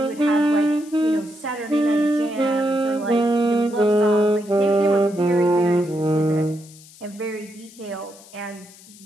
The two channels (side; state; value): left; noise; hiss, 22 dB below the sound